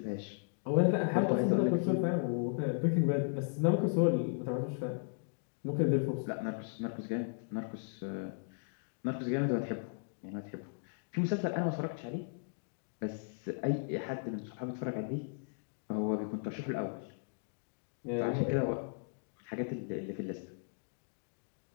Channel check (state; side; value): silent; right; digital silence